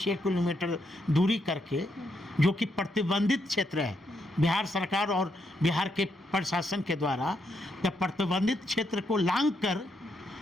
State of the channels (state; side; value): normal; both; correlation 0.78